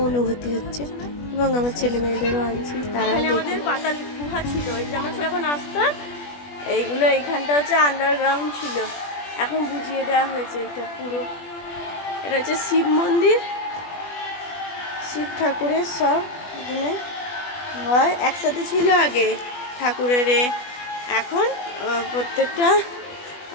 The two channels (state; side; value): late; right; 20 ms